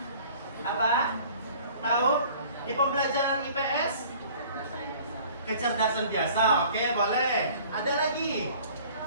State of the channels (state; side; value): inverted; both; correlation -0.50